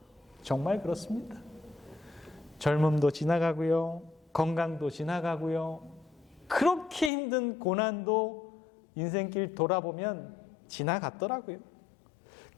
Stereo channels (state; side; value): drops out; right; at 7.1 s